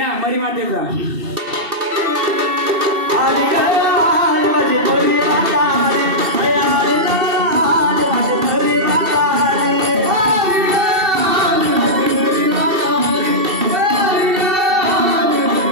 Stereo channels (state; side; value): late; left; 2.7 ms